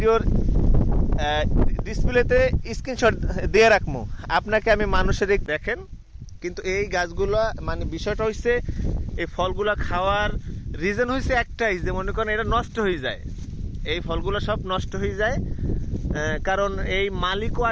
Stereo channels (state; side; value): identical; both; correlation 1.00